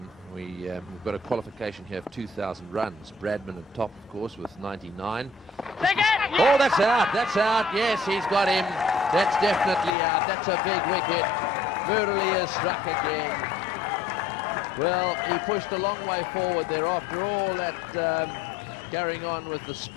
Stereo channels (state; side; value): drops out; right; at 10.0 s